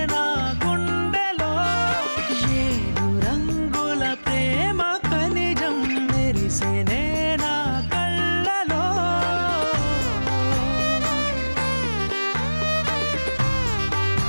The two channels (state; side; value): inverted; both; correlation -1.00